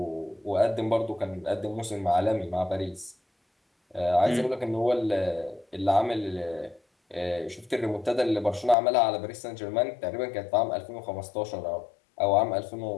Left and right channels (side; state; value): right; drops out; at 8.8 s